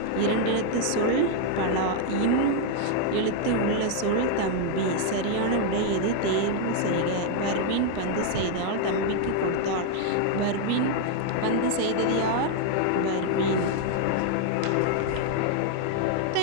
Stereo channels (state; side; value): different; both; correlation 0.00